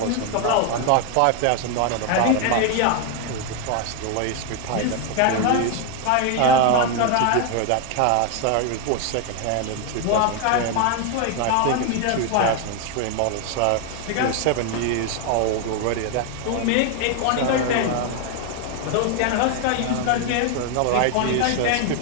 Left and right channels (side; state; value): both; different; correlation 0.00